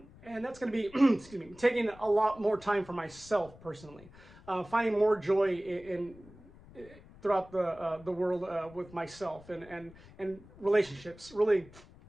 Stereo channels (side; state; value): left; noise; rumble, 21 dB below the sound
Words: that's going to be, excuse me, taking a lot more time for myself personally, finding more joy in throughout the world with myself and relationships. Really